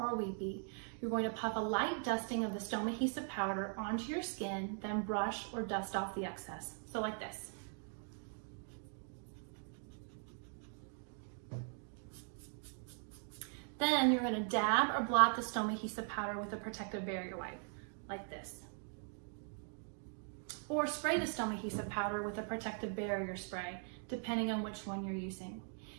weepy, you're going to puff a light dusting of the Stomahesive powder onto your skin, then brush or dust off the excess. So like this. Then you're going to dab or blot the Stomahesive powder with a protective barrier wipe, like this. Or spray the Stomahesive powder with a protective barrier spray, depending on which one you're using.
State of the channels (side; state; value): left; silent; 51 dB below the other